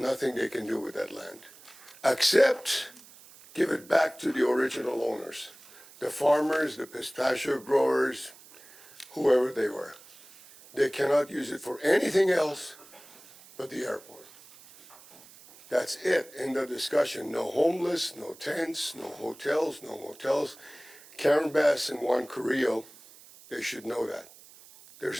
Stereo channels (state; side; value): noise; right; hiss, 22 dB below the sound